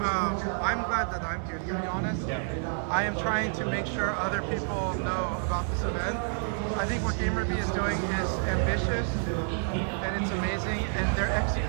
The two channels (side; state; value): left; silent; 59 dB below the other